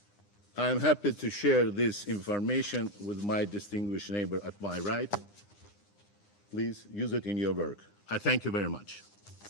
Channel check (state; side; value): late; right; 9.8 ms